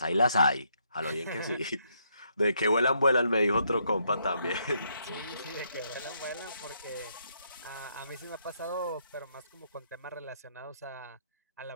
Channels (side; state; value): both; inverted; correlation -0.74